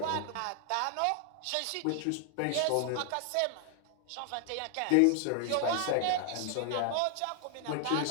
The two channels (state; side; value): different; both; correlation 0.00